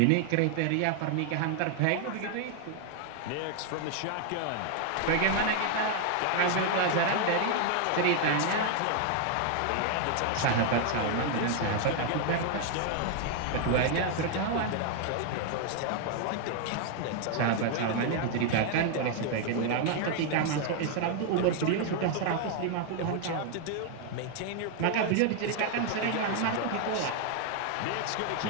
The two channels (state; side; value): different; both; correlation 0.00